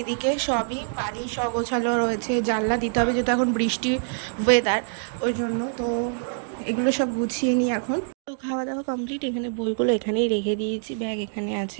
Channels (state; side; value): silent; left; digital silence